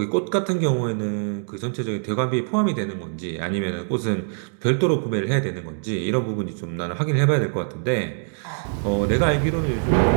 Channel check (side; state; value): left; silent; digital silence